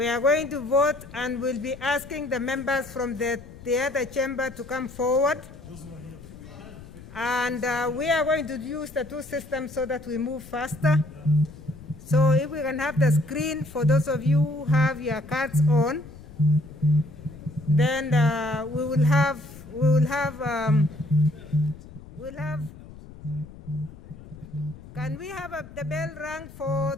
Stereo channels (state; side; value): noise; left; rumble, 17 dB below the sound